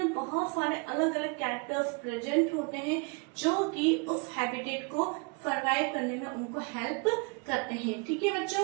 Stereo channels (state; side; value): quieter; left; 32.7 dB